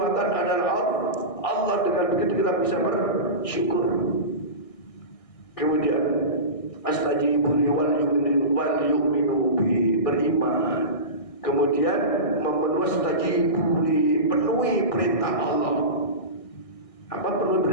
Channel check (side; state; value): right; late; 1.6 ms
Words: adalah Allah. Dengan begitu kita bisa bersyukur. Kemudian astajibu li wal yu'minu bi, beriman. Kemudian penuhi perintah Allah. Apa penuhi